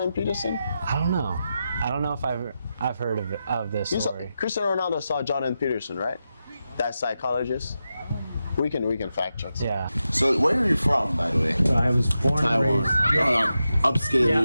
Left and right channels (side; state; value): both; inverted; correlation -0.89